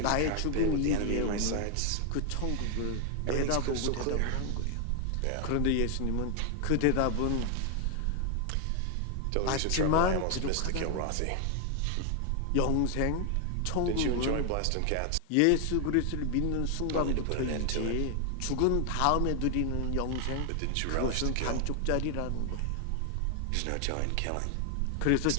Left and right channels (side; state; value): both; different; correlation 0.00